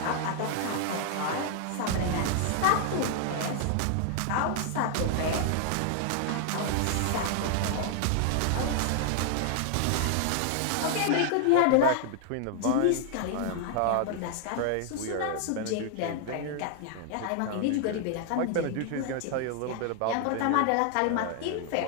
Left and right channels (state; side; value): different; both; correlation 0.00